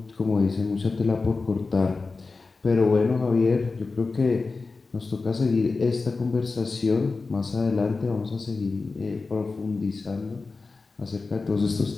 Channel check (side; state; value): right; quieter; 4.0 dB